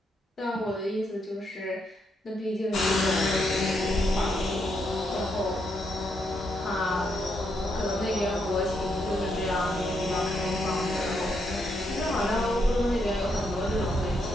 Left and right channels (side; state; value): both; normal; correlation 0.78